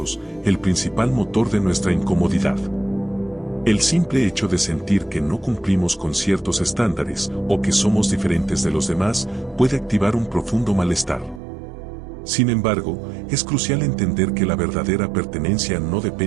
el principal motor de nuestra incomodidad. El simple hecho de sentir que no cumplimos con ciertos estándares o que somos diferentes de los demás puede activar un profundo malestar. Sin embargo, es crucial entender que la verdadera pertenencia no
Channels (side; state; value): left; drops out; at 11.4 s